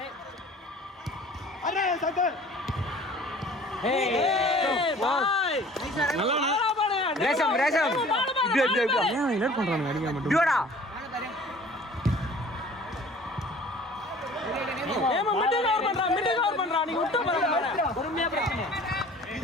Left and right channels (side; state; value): both; normal; correlation 0.48